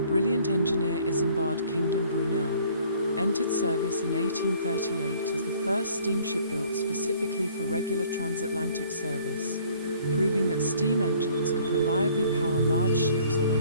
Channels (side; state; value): both; inverted; correlation -0.57